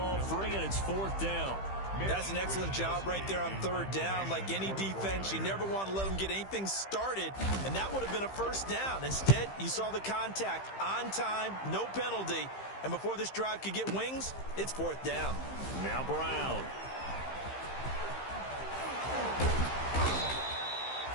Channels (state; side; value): late; right; 15 ms